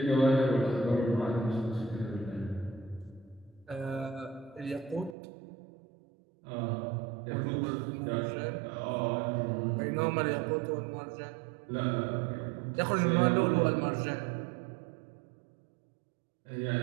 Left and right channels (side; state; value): left; drops out; at 5.2 s